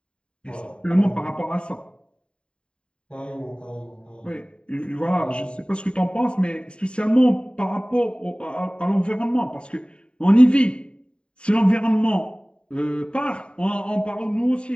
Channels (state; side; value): late; right; 0.053 ms